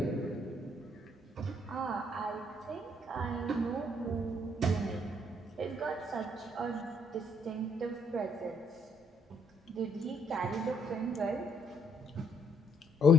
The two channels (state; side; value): normal; both; correlation 0.69